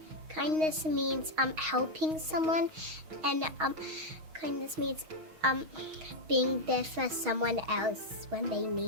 Kindness means helping someone, and kindness means being there for someone else when they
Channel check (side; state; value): left; late; 6.3 ms